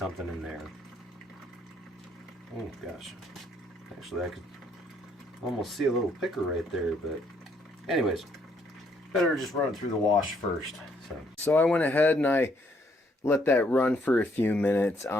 in there. Oh gosh. Actually, I could almost see a little picker right there, but anyways, better just run it through the wash first. So I went ahead and I let that run for a few minutes.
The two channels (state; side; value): normal; both; correlation 0.69